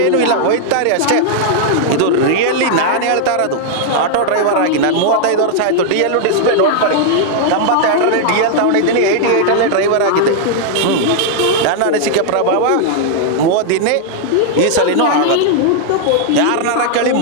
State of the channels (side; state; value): both; different; correlation -0.01